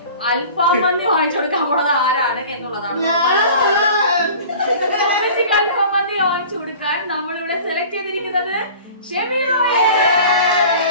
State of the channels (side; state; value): both; inverted; correlation -0.42